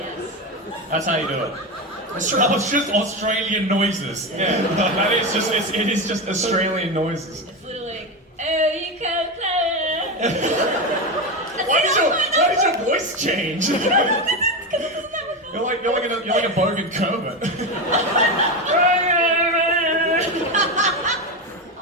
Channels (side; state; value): both; normal; correlation 0.16